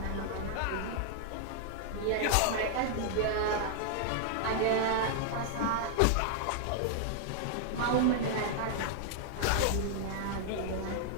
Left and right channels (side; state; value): both; different; correlation -0.01